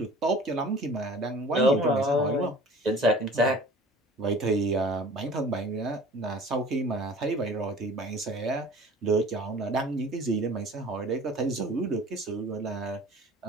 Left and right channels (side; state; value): both; normal; correlation 0.45